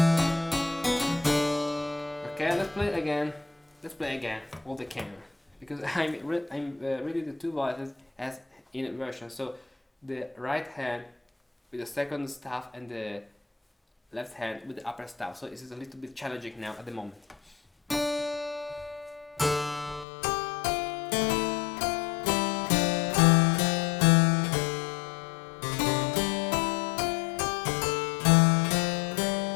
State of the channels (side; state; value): right; drops out; at 20.1 s